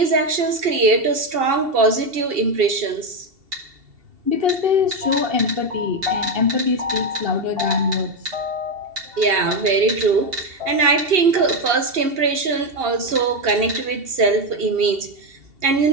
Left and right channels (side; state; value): left; late; 2.7 ms